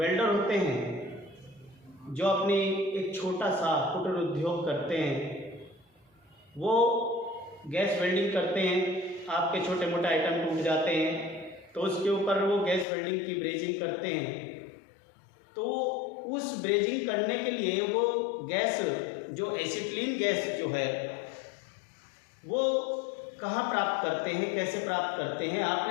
होते हैं, जो अपनी एक छोटा सा कुटीर उद्योग करते हैं, वो गैस वेल्डिंग करते हैं। आपके छोटे मोटे आइटम टूट जाते हैं तो उसके ऊपर वो गैस वेल्डिंग की ब्रेजिंग करते हैं। तो उस ब्रेजिंग करने के लिए वो गैस, जो एसिटिलीन गैस जो है, वो कहाँ प्राप्त करते हैं, कैसे प्राप्त करते हैं।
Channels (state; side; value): drops out; right; at 12.9 s